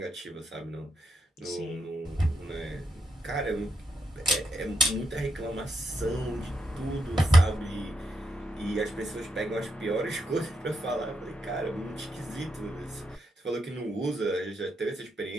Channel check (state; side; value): normal; both; correlation 0.82